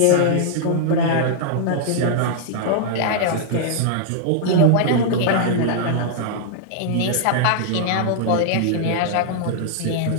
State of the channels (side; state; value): both; different; correlation -0.01